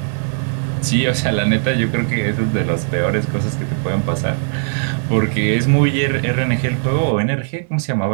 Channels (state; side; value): silent; left; digital silence